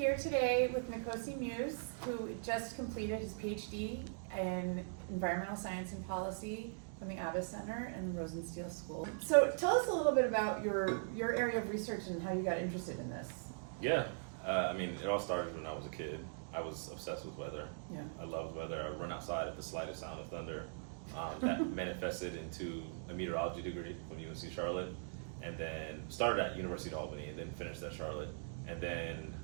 today with Nkosi Muse, who just completed his PhD in Environmental Science and Policy from the Abbas Center and the Rosenstiel School. So tell us a little bit about your area of research and how you got interested in this. Yeah, it all started when I was a kid. I was obsessed with weather. Yeah. I loved weather. I would run outside at the slightest sound of thunder. That manifested into a meteorology degree from UNC Charlotte, and then started at University of Albany and then finished at Charlotte. And then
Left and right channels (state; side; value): silent; left; digital silence